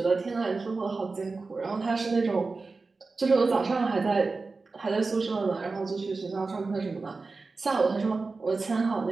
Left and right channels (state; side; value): quieter; left; 3.9 dB